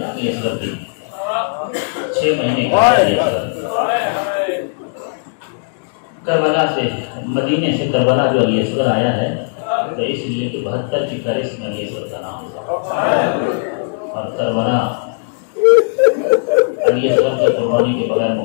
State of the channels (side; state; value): right; silent; digital silence